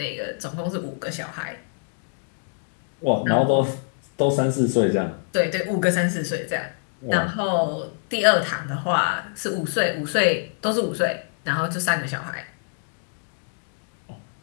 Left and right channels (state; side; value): silent; right; digital silence